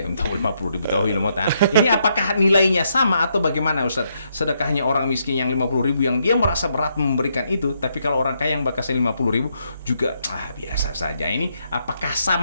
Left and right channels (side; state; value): both; inverted; correlation -0.77